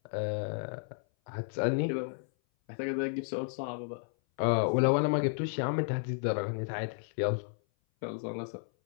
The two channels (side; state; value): right; silent; 56 dB below the other